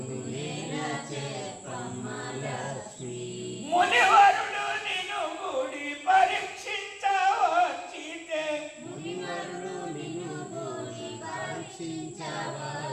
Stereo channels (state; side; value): identical; both; correlation 1.00